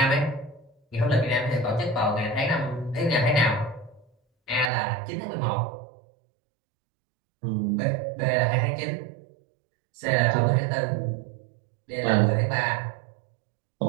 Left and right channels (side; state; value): left; drops out; at 4.7 s